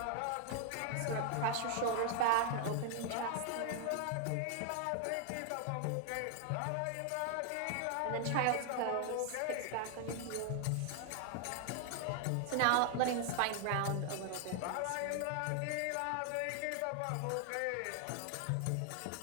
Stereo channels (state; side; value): different; both; correlation 0.00